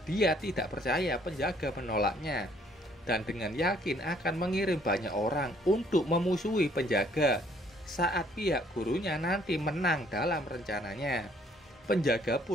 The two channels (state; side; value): normal; both; correlation 0.63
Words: Dia tidak percaya penjaga menolaknya, dan dengan yakin akan mengirim banyak orang untuk memusuhi penjaga saat pihak gurunya nanti menang dalam rencananya. Penjaga